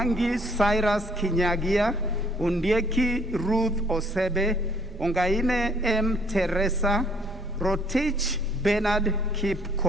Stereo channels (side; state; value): both; normal; correlation 0.63